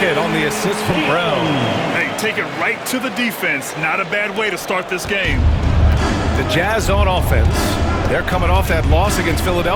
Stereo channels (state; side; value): identical; both; correlation 1.00